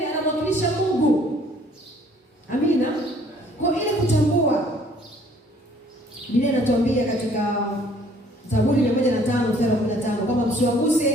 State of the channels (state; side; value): normal; both; correlation 0.59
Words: anamwakilisha Mungu. Amina. Kwa ile kutambua, Biblia inatuambia katika Zaburi 105:15 kama